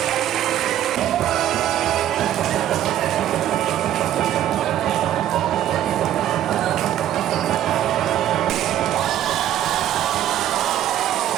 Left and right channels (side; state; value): left; quieter; 11.8 dB